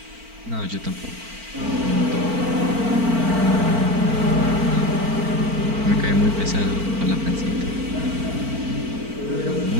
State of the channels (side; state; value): left; late; 4.4 ms